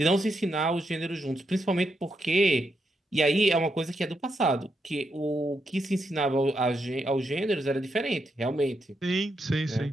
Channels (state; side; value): normal; both; correlation 0.82